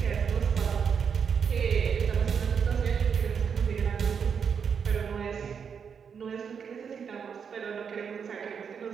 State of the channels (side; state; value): left; quieter; 6.8 dB